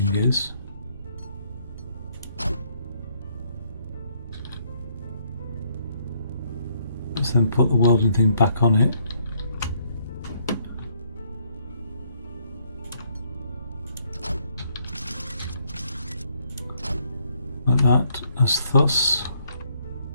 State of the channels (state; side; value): inverted; both; correlation -0.70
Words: is. Let's then put the welding thing back on it. Like that, as thus.